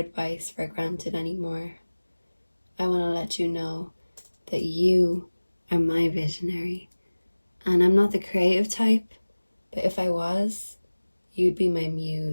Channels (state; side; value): inverted; both; correlation -1.00